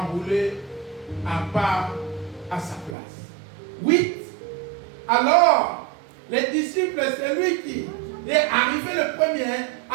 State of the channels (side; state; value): left; drops out; at 3.0 s